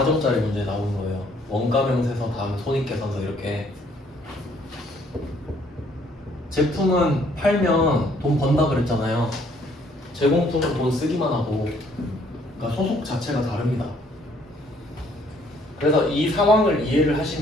문제에 나오는 거예요. 원가 명세서 다음 손익계산서 이렇게. 제품은 팔면 돈 번다 그랬잖아요. 제공품은 돈 쓰기만 하고, 그러니까 소속 자체가 다릅니다. 그래서 이 상황을 이해를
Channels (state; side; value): normal; both; correlation 0.64